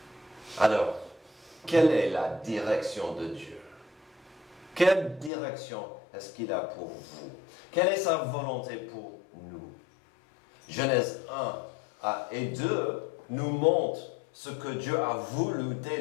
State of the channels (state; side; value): drops out; right; at 5.3 s